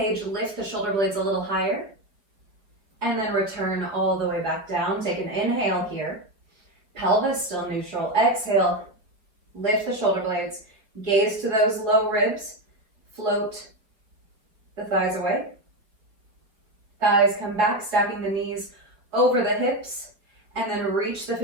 lift the shoulder blades a little higher, and then return all the way back down. Take an inhale here. Pelvis still neutral. Exhale, lift the shoulder blades, gaze to those low ribs, float the thighs away. Thighs come back, stacking the knees over the hips, and then reach the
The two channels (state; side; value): late; left; 5.0 ms